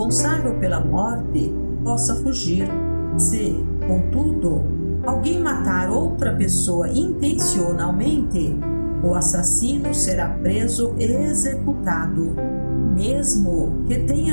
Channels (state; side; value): inverted; both; correlation -1.00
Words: pela morte possa fugir. Se, contudo, alguém matar outra pessoa intencionalmente, o assassino será preso e executado, mesmo que